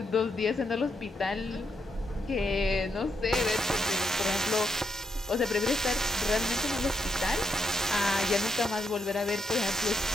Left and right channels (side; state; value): both; normal; correlation 0.78